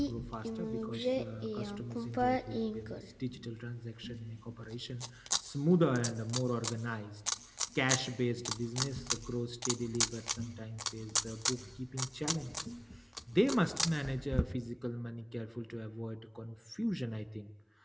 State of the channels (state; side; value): identical; both; correlation 1.00